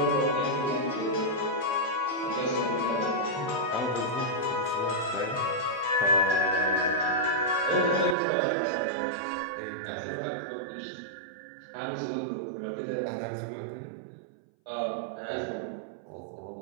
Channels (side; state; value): left; drops out; at 8.2 s